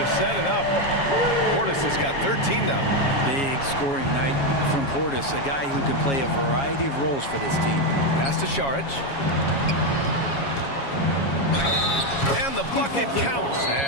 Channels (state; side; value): late; right; 7.3 ms